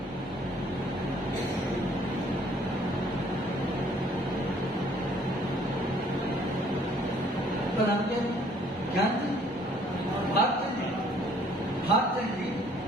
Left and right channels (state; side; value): normal; both; correlation 0.60